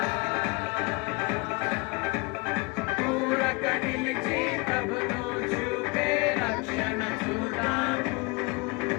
పూరక నిలిచి ప్రభును చూపే రక్షణ చూద్దాము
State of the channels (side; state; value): right; quieter; 27.9 dB